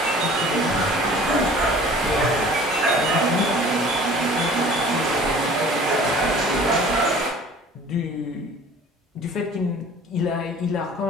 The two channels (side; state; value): both; normal; correlation 0.47